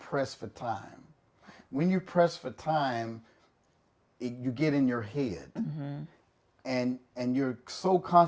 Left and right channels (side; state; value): both; identical; correlation 1.00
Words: for time. When you press for time, you get in your head. And you're so